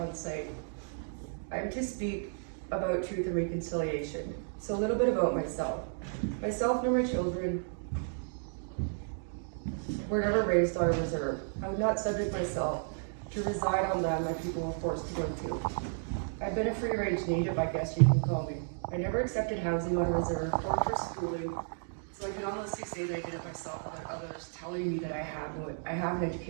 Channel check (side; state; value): left; silent; digital silence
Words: site. I'm to speak about truth and reconciliation. So a little bit about myself. Myself and my children were never raised on a reserve. I would not subject myself to reside on land my people were forced to go to. I've been a free-range native, I guess you can call me. I never accepted housing on a reserve or for schooling, so I can honestly say that I did it myself without others telling me that I have an